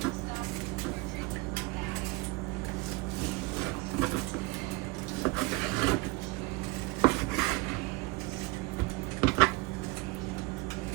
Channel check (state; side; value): quieter; left; 23.5 dB